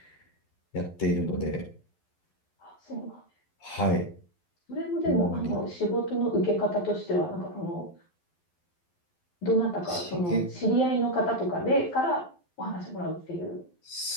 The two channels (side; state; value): right; late; 11 ms